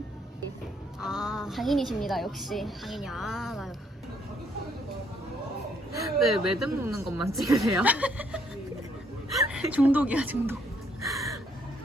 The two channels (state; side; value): normal; both; correlation 0.69